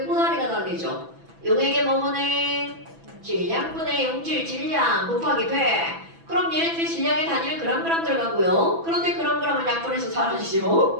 꼬다리가 달리죠. 용액의 뭐분의 질량분의 용질 질량 곱하기 100. 그럼 얘네들이 질량의 단위를 그램 들어가고요. 그런데 그램은 약분해서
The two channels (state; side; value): late; left; 6.0 ms